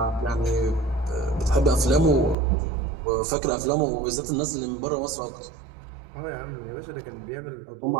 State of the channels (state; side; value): drops out; left; at 2.4 s